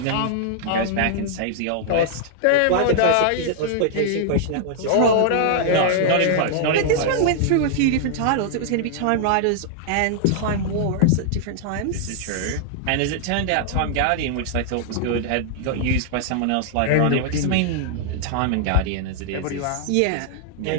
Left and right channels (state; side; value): different; both; correlation -0.01